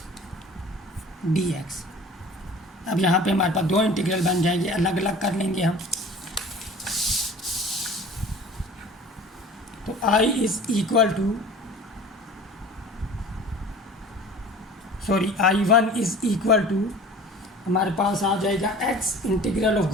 dx। अब यहाँ पे हमारे पास 2 इंटीग्रल बन जाएंगे, अलग अलग कर लेंगे हम। तो I is equal to I1 is equal to हमारे पास आ जाएगा x integral of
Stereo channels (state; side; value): normal; both; correlation 0.42